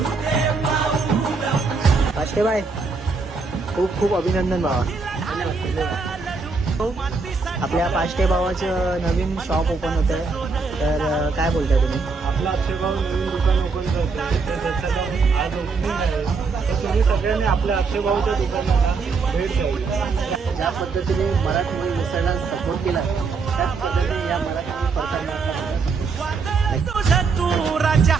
दे पाऊल. पाष्टेबाई खूप खूप अभिनंदन भावा. आपल्या पाष्टे भावाचं नवीन शॉप ओपन होत आहे, तर काय बोलताय तुम्ही? आपला अक्षय भाऊ नवीन दुकान ओपन करतो, त्याचं आज ओपनिंग आहे. तर तुम्ही सगळ्यांनी आपल्या अक्षय भाऊच्या दुकानाला भेट द्यावी. ज्या पद्धतीने मराठी मिसळला सपोर्ट केला त्याच पद्धतीने या मराठी तुझ तू राजा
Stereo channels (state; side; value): quieter; left; 4.5 dB